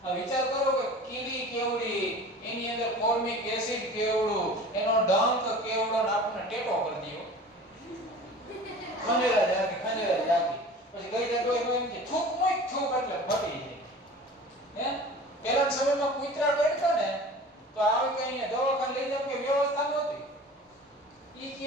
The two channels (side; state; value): both; normal; correlation 0.40